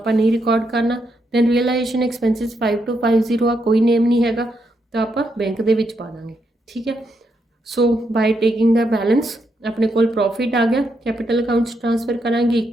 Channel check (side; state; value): both; normal; correlation 0.80